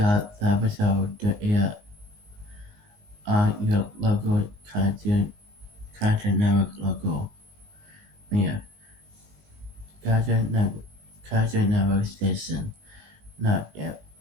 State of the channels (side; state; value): left; late; 19 ms